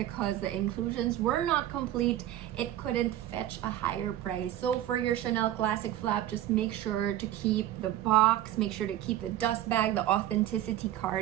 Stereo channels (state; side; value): quieter; left; 12.8 dB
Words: the inclusions were not complete. It couldn't fetch a higher price. So for your Chanel Classic flap, just make sure to keep the box, make sure to keep the dust bag, the authenticity